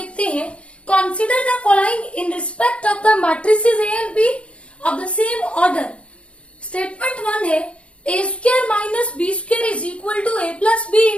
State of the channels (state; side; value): late; right; 0.060 ms